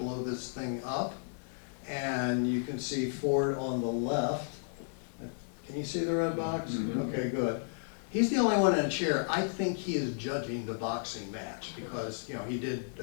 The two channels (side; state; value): right; silent; digital silence